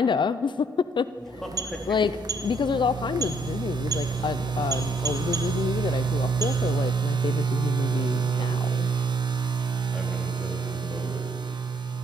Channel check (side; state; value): both; normal; correlation 0.68